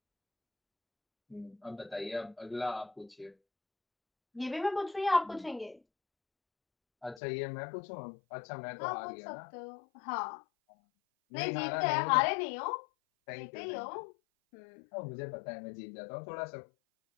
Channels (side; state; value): right; drops out; at 7.2 s